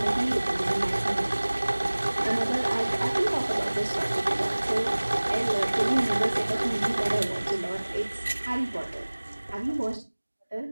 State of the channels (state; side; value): inverted; both; correlation -1.00